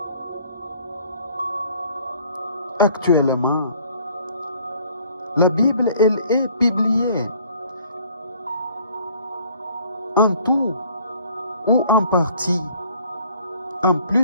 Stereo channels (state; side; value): inverted; both; correlation -0.57